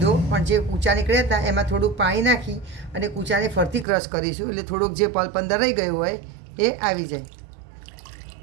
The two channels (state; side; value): drops out; left; at 3.9 s